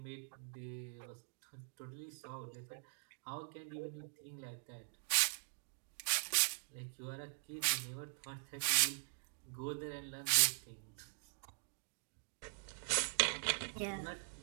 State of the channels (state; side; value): silent; left; digital silence